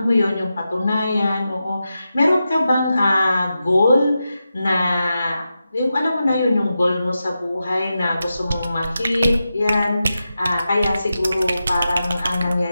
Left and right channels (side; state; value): both; inverted; correlation -0.90